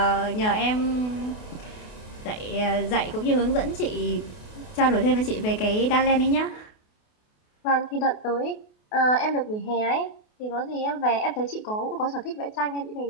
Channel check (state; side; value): late; right; 28 ms